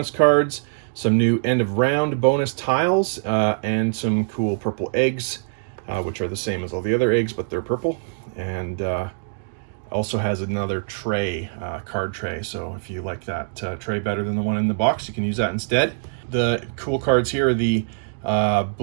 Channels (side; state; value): left; silent; digital silence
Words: cards, some new end of round bonus tiles, and some cool purple eggs, which are the same as all the other eggs, but they're purple. And also has another tray, card tray, so if you like that tray better than the one in the box, you can use that instead. The cool cards here are the